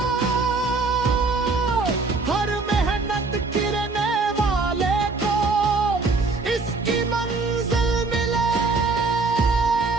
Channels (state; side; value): quieter; left; 3.9 dB